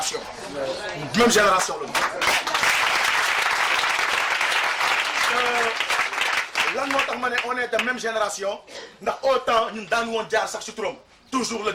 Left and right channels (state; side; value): identical; both; correlation 1.00